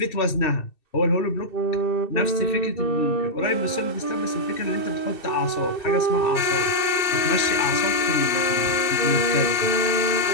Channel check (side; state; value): right; late; 2.6 ms